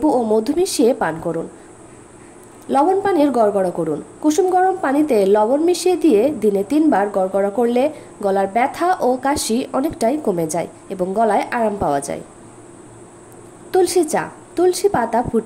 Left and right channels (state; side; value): identical; both; correlation 1.00